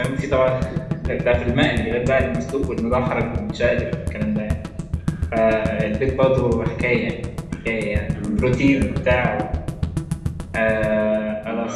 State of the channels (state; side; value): identical; both; correlation 1.00